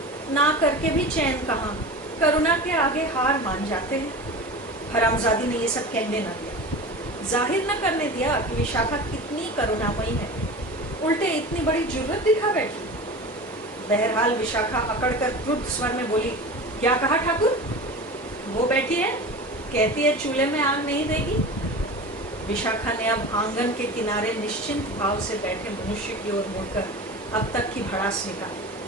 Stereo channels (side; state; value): both; normal; correlation 0.32